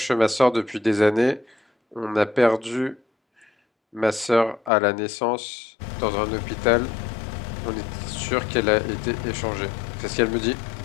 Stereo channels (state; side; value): drops out; right; at 4.7 s